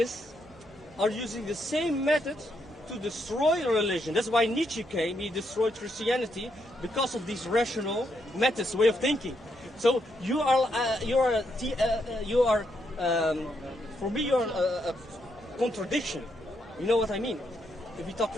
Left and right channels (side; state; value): both; normal; correlation 0.78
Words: are using the same method to destroy religion. That's why Nietzsche came, he destroyed Christianity because of these rational methods, way of thinking. So you are for me you're a contradiction. You know what I mean? If we talk